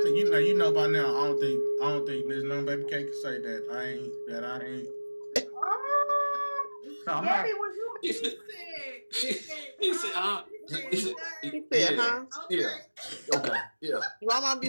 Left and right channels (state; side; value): inverted; both; correlation -1.00